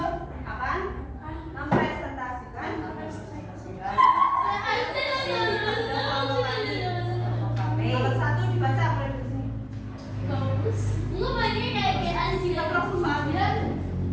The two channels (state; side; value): identical; both; correlation 1.00